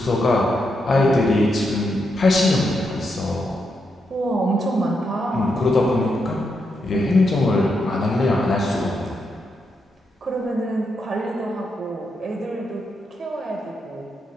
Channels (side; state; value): both; normal; correlation 0.83